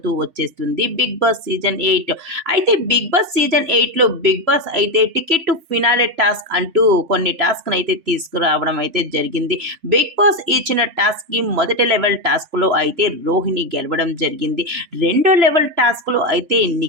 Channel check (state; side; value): late; left; 3.0 ms